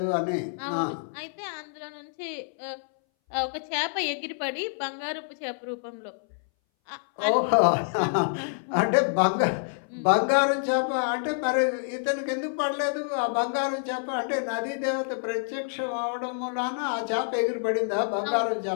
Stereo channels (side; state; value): right; silent; 60 dB below the other